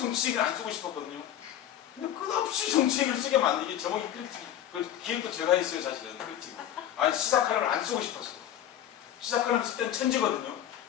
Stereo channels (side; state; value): right; quieter; 11.0 dB